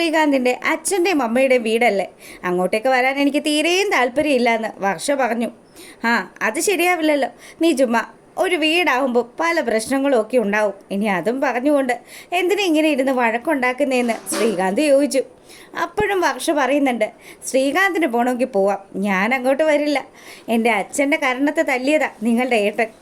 അച്ഛൻ്റെയും അമ്മയുടെയും വീടല്ലേ, അങ്ങോട്ടേക്ക് വരാൻ എനിക്ക് തീരെയും താല്പര്യമില്ലയെന്ന് വർഷ പറഞ്ഞു. ആ അത് ശരിയാവില്ലല്ലോ, നീ ചുമ്മാ, ഒരു വീടാവുമ്പോൾ പല പ്രശ്നങ്ങളും ഒക്കെ ഉണ്ടാവും, ഇനി അതും പറഞ്ഞുകൊണ്ട് എന്തിനാ ഇങ്ങനെ ഇരുന്ന് വഴക്കുണ്ടാക്കുന്നതെന്ന് ശ്രീകാന്ത് ചോദിച്ചു. അപ്പോഴും വർഷ പറയുന്നുണ്ട്, ശ്രീകാന്തിന് പോകണമെങ്കിൽ പോവാം, ഞാൻ അങ്ങോട്ട് വരില്ല. എൻ്റെ അച്ഛൻ്റെ കരണത്തെ തല്ലിയതാ നിങ്ങളുടെ ഏട്ടൻ,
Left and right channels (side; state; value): both; identical; correlation 1.00